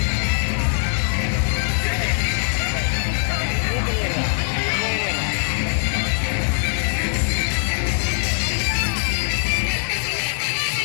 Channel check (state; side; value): silent; right; 65 dB below the other